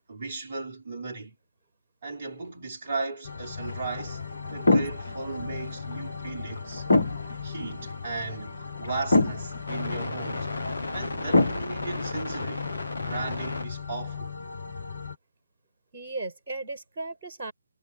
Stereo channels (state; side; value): inverted; both; correlation -0.83